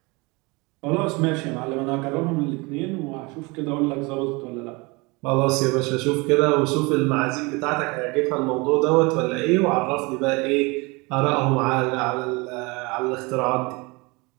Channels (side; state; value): left; quieter; 26.3 dB